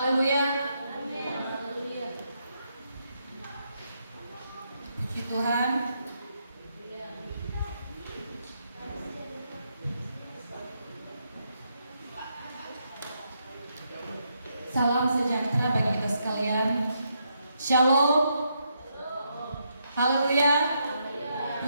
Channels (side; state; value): both; inverted; correlation -0.79